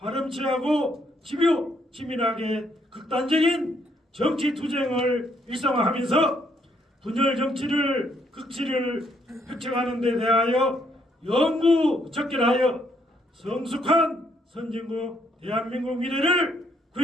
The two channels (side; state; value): both; normal; correlation 0.71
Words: 집요 치밀하게 극단적인 정치 투쟁을 일상화하면서 분열 정치를 극치를 획책하는 데 대하여 영구적결하여 성숙한 선진국 대한민국 미래를